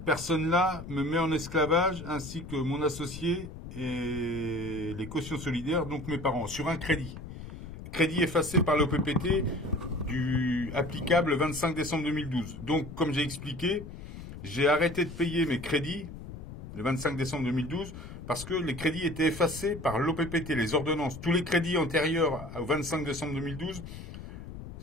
personne-là me met en esclavage ainsi que mon associé et les cautions solidaires, donc mes parents, sur un crédit. Crédit effacé par l'OPPT applicable le 25 décembre 2012. Donc, comme j'ai expliqué, j'ai arrêté de payer mes crédits le 25 décembre 2012 parce que les crédits étaient effacés par l'OPPT, les ordonnances. Tous les crédits antérieurs au 25 décembre 2012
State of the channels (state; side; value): noise; left; rumble, 12 dB below the sound